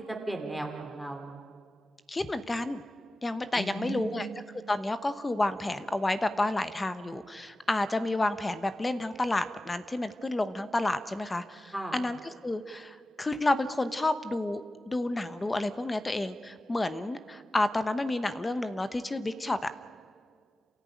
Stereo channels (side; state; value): both; normal; correlation 0.95